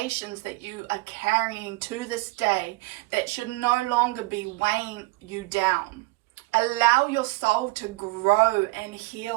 that you are carrying to this day that should no longer be weighing you down. Allow your soul to grow and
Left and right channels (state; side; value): quieter; left; 23.1 dB